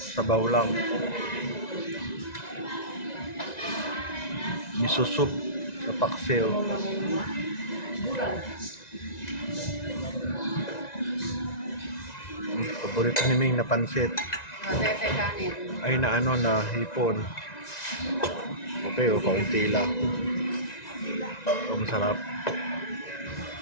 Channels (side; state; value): right; late; 1.9 ms